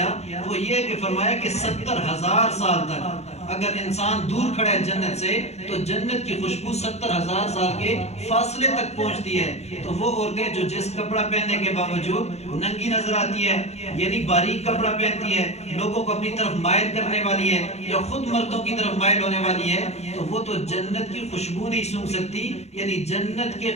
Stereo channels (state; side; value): late; right; 0.31 ms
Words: وہ یہ کہ فرمایا کہ 70,000 سال تک اگر انسان دور کھڑا ہے جنت سے تو جنت کی خوشبو 70,000 سال کے فاصلے تک پہنچتی ہے. تو وہ عورتیں جو جس کپڑا پہننے کے باوجود ننگی نظر آتی ہے, یعنی باریک کپڑا پہنتی ہے, لوگوں کو اپنی طرف مائل کرنے والی ہے یا خود مردوں کی طرف مائل ہونے والی ہے, تو وہ تو جنت کی خوشبو نہیں سونگ سکتی, یعنی جنت کے